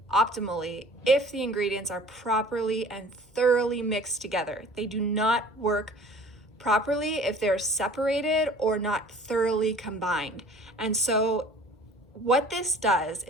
optimally if the ingredients are properly and thoroughly mixed together. They do not work properly if they're separated or not thoroughly combined. And so what this does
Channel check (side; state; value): both; normal; correlation 0.48